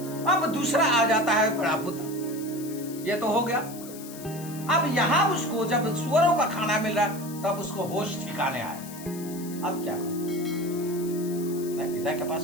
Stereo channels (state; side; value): noise; left; hiss, 15 dB below the sound